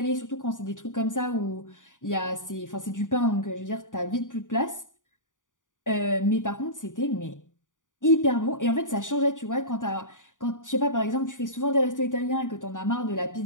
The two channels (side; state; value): right; late; 0.87 ms